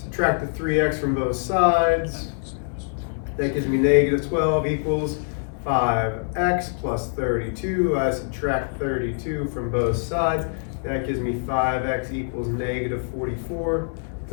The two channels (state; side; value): silent; right; digital silence